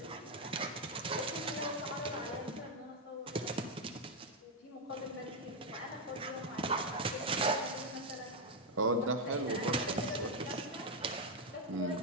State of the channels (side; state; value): both; normal; correlation 0.02